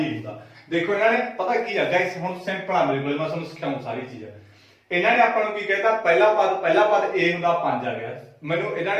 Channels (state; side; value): identical; both; correlation 1.00